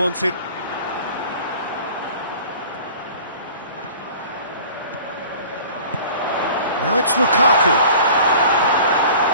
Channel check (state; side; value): inverted; both; correlation -0.44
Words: Now it's Lukaku.